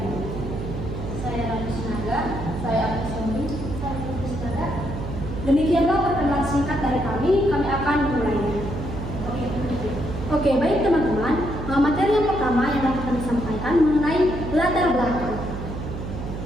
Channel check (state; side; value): noise; right; hum, 7 dB below the sound